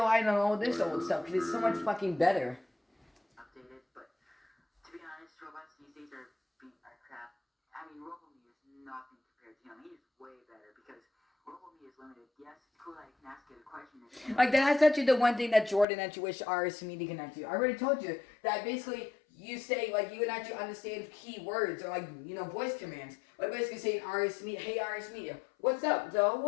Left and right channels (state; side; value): drops out; right; at 15.9 s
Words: on all this old stuff because it's so much fucking better. updated, but to be honest, robots these days are crap. I mean, RoboMe is nothing compared to him. He is way better because RoboMe is limited. Yes, it's cool that you can ask it a question. Like, that's actually the one thing that Jordan actually wish RS Media can actually. I already told you that basically you say, like, you would actually understand key words or, like, you know, voice commands. Like, basically saying RS Media, hey RS Media, what's up, Joe?